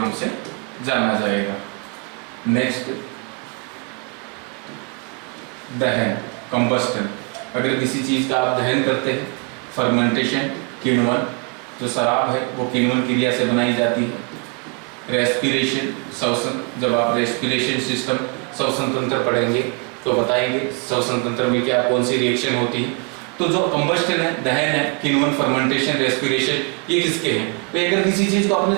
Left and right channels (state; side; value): quieter; left; 33.4 dB